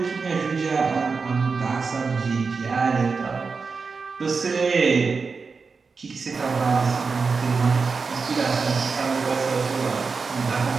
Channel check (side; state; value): left; quieter; 4.8 dB